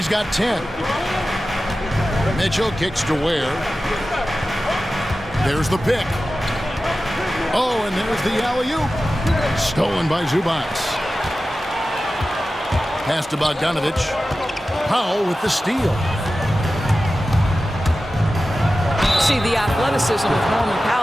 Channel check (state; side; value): normal; both; correlation 0.94